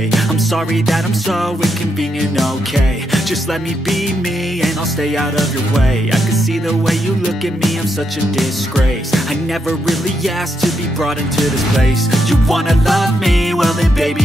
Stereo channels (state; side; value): normal; both; correlation 0.80